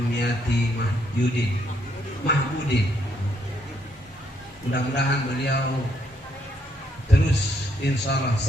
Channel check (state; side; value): normal; both; correlation 0.73